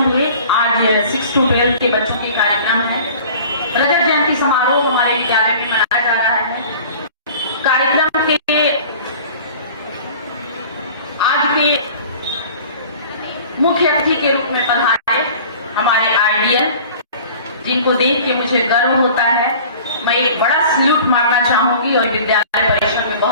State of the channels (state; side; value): inverted; both; correlation -0.45